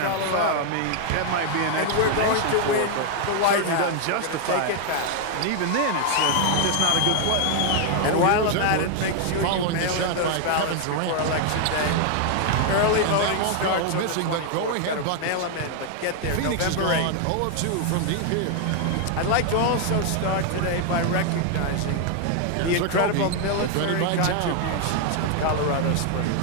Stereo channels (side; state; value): both; different; correlation 0.00